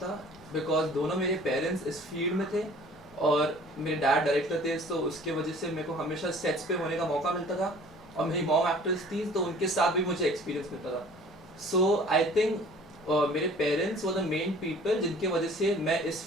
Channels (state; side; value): normal; both; correlation 0.49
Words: था बिकॉज दोनों मेरे पेरेंट्स इस फील्ड में थे और मेरे डैड डायरेक्टर थे, तो उसके वजह से मेरे को हमेशा सेट्स पे होने का मौका मिलता था और मेरी मॉम एक्ट्रेस थी तो उनके साथ भी मुझे एक्सपीरियंस मिलता था। सो आई थिंक मेरे parents were the main people जिनके वजह से मैं इस